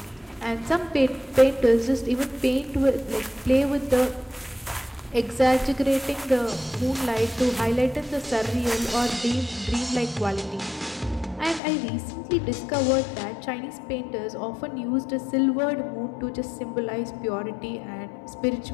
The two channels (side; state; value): right; drops out; at 11.6 s